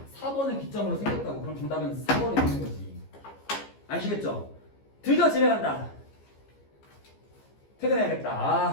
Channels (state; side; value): late; right; 15 ms